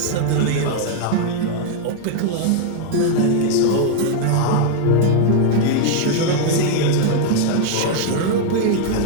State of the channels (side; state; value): both; different; correlation 0.00